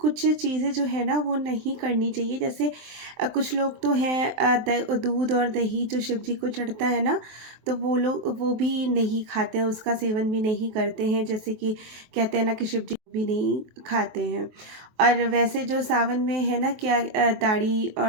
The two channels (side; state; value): left; late; 23 ms